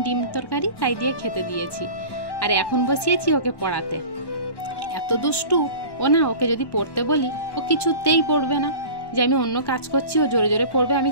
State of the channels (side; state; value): right; late; 1.1 ms